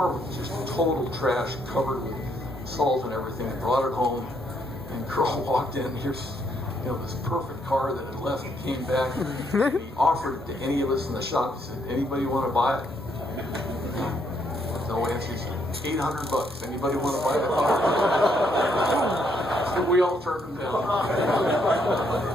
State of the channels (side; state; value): both; normal; correlation 0.72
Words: was just total trash, covered with salt and everything. I brought it home, and girl walked in. Here's this perfect car that had left and came back. And he offered it to any of us in the shop. He said, "Anybody want to buy it?" No answer. He said, $800. Anybody want to buy the car? So we all turned him down.